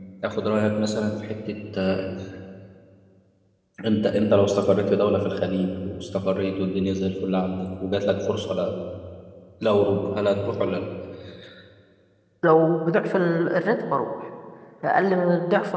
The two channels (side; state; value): both; identical; correlation 1.00